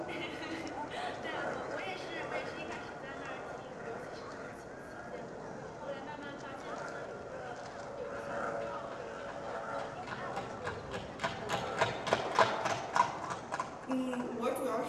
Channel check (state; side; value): noise; left; rumble, 29 dB below the sound